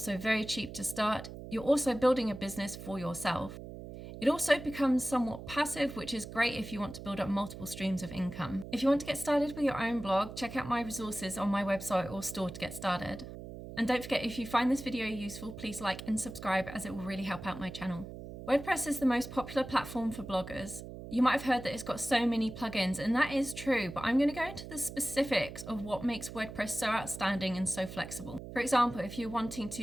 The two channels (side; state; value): right; noise; hum, 11 dB below the sound